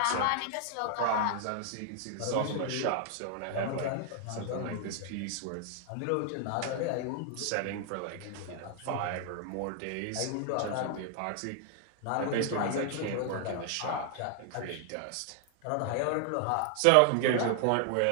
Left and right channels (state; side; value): different; both; correlation 0.00